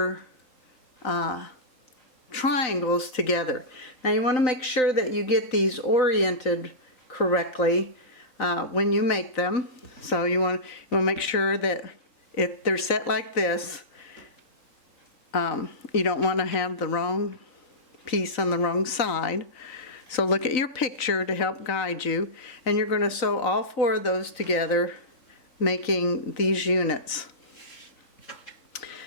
triangles together. Now you want to make sure that you get these oriented correctly when you make them. So you want to make sure that if they're set like this, you don't want to have the wrong piece on the wrong side. So look at your picture to help guide you, and you're going to sew all 4 of those together, making these units.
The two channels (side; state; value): right; late; 3.9 ms